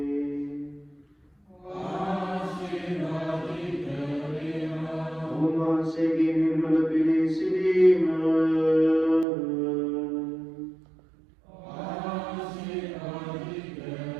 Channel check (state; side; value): drops out; left; at 9.2 s